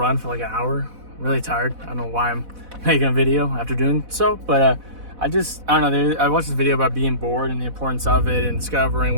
for like an hour. Really tired. I don't know why I'm making a video after doing so, but I don't know. I watched this video about being bored and the importance of it and discovering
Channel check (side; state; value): left; late; 4.1 ms